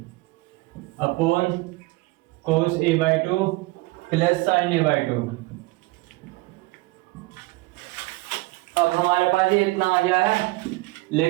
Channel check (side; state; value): left; quieter; 22.3 dB